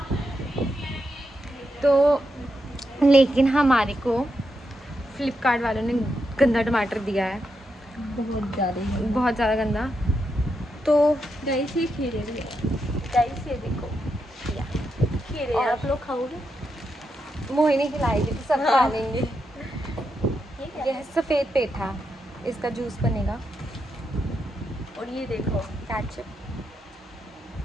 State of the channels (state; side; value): normal; both; correlation 0.84